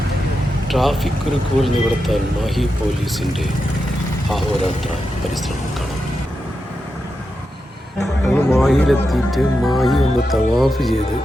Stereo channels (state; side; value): normal; both; correlation 0.88